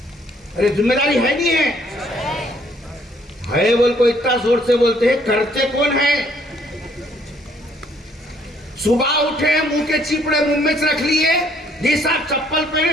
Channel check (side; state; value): both; normal; correlation 0.65